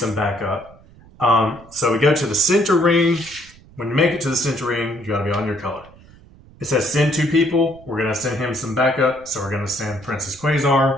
backup. So we go to the center ring. When you make it to the center ring, you got to be on your color. It says send 2 people. We're going to send him some backup, so we're going to send Princess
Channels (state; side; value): noise; right; rumble, 24 dB below the sound